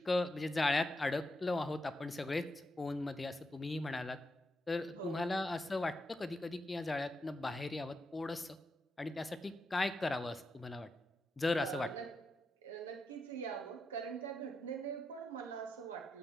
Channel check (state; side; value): normal; both; correlation 0.85